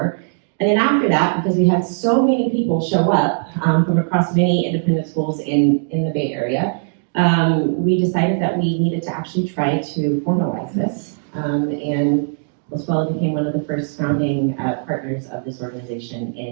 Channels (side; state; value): left; silent; digital silence